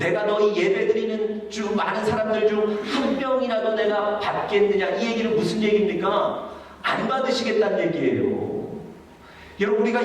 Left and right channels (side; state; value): both; identical; correlation 1.00